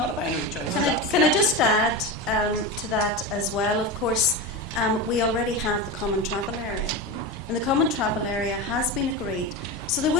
a binary choice. Can I just add to that as well? Of course, we already have the common travel area, and the common travel area has been agreed. So there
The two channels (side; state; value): both; normal; correlation 0.21